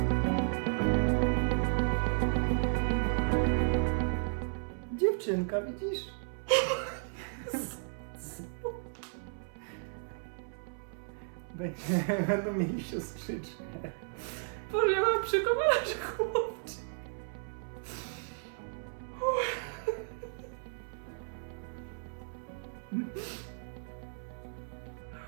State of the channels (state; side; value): silent; left; 55 dB below the other